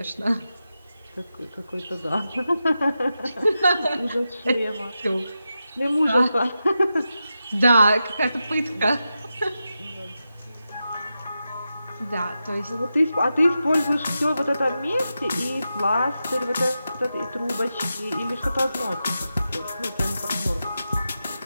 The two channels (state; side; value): inverted; both; correlation -0.90